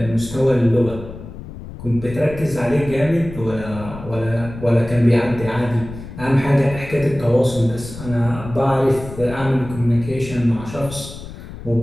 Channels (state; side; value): noise; left; rumble, 13 dB below the sound